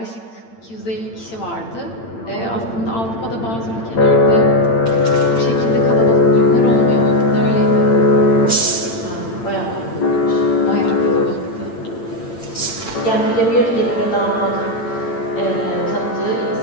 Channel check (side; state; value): right; late; 8.8 ms